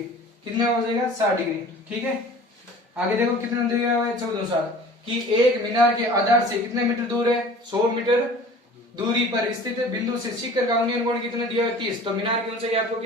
कितना हो जाएगा? 60 डिग्री। ठीक है, आगे देखो कितना दिया हुआ है? 14 कि एक मीनार के आधार से कितने मीटर दूर है? 100 मीटर दूरी पर स्थित बिंदु से शिखर का उन्नयन कोण कितना दिया है? 30। तो मीनार की ऊंचाई आपको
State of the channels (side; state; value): both; normal; correlation 0.44